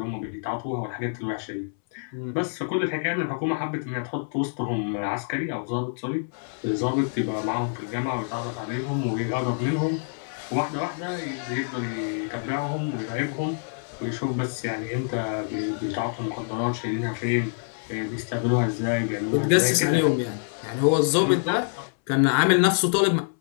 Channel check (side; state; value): right; silent; 61 dB below the other